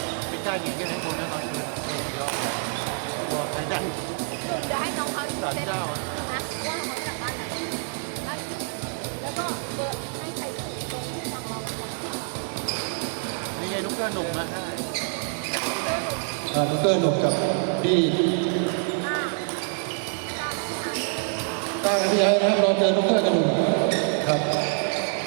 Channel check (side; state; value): left; silent; 61 dB below the other